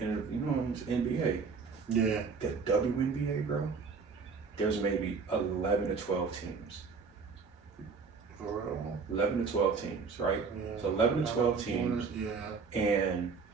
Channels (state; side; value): quieter; left; 5.2 dB